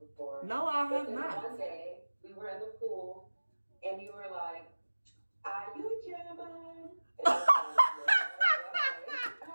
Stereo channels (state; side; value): inverted; both; correlation -1.00